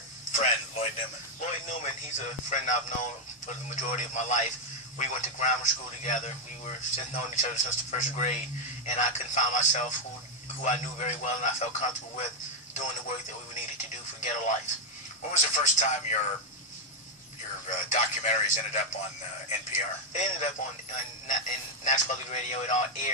friend, Lloyd Newman? Lloyd Newman, he's a friend I've known for the majority of my life. We went to grammar school together. We were known each other since the first grade, and I couldn't find myself who I knew very well and I felt comfortable with doing the work that we needed to do for Ghetto Life. When was the first time your documentaries ended up on NPR? They ended up in National Public Radio. It all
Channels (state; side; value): normal; both; correlation 0.02